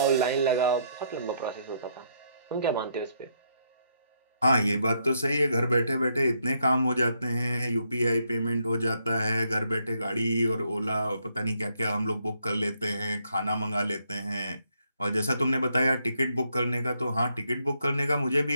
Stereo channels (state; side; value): inverted; both; correlation -0.74